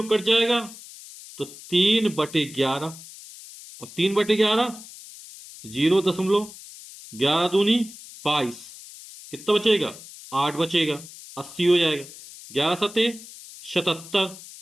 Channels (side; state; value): left; noise; hiss, 17 dB below the sound